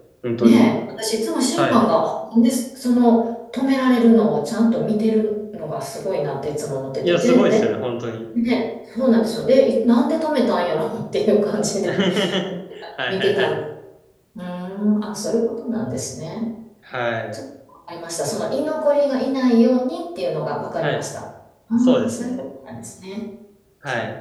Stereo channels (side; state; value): both; identical; correlation 1.00